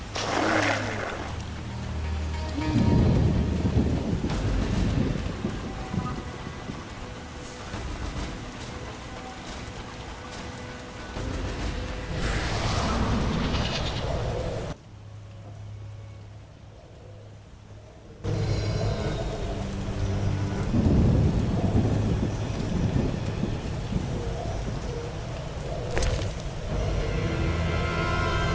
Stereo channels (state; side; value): identical; both; correlation 1.00